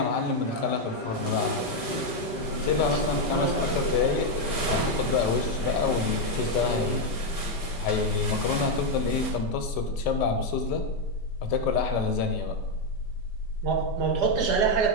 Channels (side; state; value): right; late; 5.2 ms